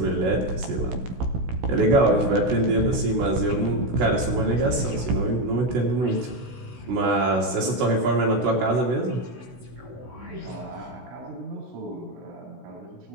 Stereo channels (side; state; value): left; late; 16 ms